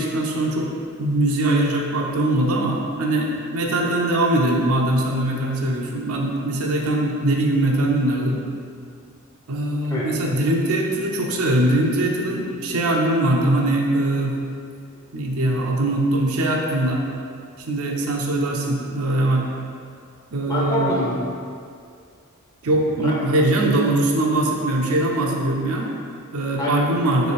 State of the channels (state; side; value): normal; both; correlation 0.42